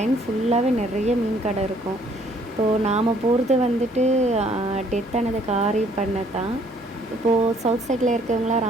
ஃபுல்லாகவே நிறைய மீன் கடை இருக்கும். இப்போது நாம் போகிறது வந்துட்டு டெத் ஆனது காரி பண்ண தான். இப்போது சவுத் சைடில் இருக்கவங்களாம்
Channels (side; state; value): both; normal; correlation 0.62